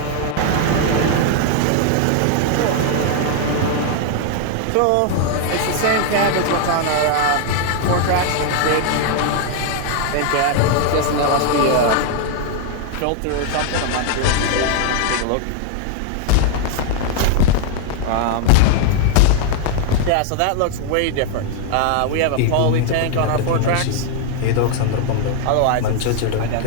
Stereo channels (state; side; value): different; both; correlation 0.00